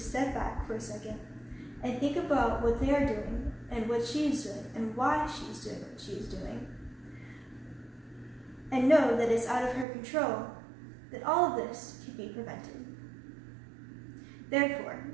step back for a second and think about what they are doing and what she is doing and why she's doing what she is doing, and know that it's out of her control, that all of this can be prevented. Therefore,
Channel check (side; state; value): left; drops out; at 9.9 s